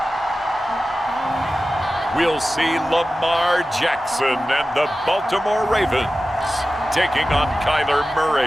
We'll see Lamar Jackson and the Baltimore Ravens taking on Kyler Murray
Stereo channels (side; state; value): both; normal; correlation 0.95